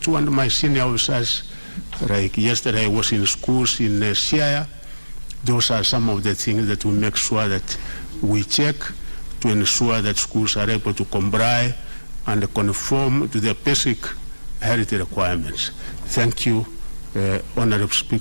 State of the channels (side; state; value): both; inverted; correlation -1.00